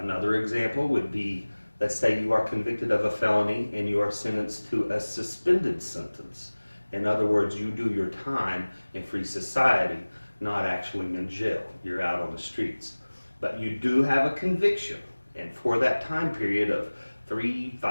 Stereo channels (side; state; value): both; inverted; correlation -1.00